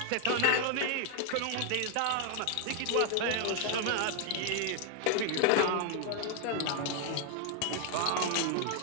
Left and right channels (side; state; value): both; different; correlation 0.00